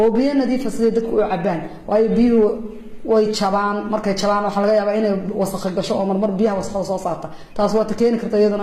biyo nadiif ah sidii dadku u cabaan waayo biyuhu way jabaan markay jabaan waxa laga yaabaa inay wasakh gasho oo marmar biyaha wasakhda soo saarta taas waa keeni karta iyaduna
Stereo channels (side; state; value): both; identical; correlation 1.00